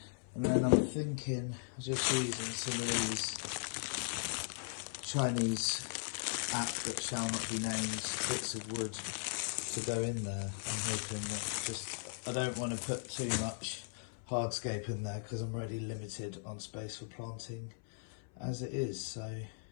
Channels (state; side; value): silent; right; 52 dB below the other